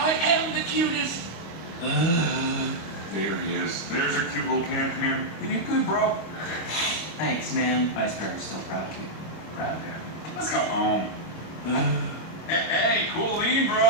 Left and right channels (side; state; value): right; late; 25 ms